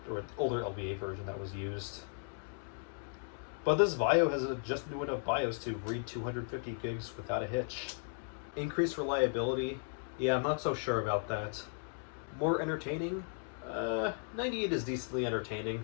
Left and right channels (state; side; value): silent; right; 54 dB below the other